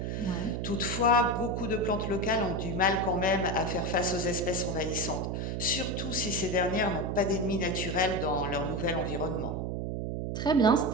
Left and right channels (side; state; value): right; noise; hum, 2 dB below the sound